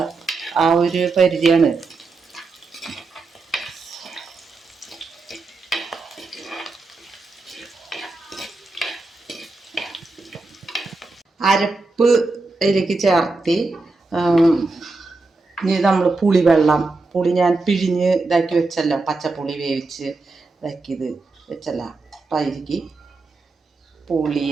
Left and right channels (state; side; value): quieter; left; 3.6 dB